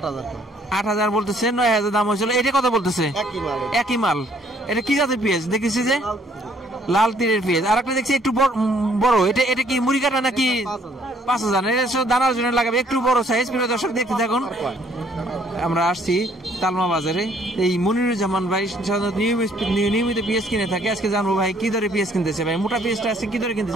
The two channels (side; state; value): both; normal; correlation 0.63